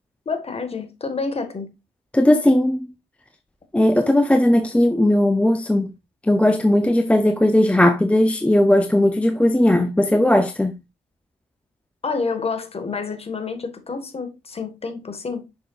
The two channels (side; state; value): both; normal; correlation 0.93